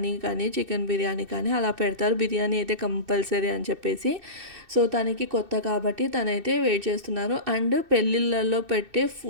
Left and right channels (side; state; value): left; late; 2.6 ms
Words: కానీ చికెన్ బిర్యానీ కానీ అలా పెడతారు. బిర్యానీ అయితే కంపల్సరీ అని చెప్పేసి. సో తనకి కొత్త కాబట్టి తనైతే వెయిట్ చేస్తున్నారు. అండ్ పెళ్ళిళ్ళల్లో పెట్టే